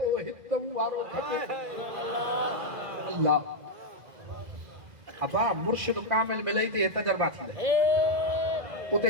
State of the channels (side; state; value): left; late; 2.0 ms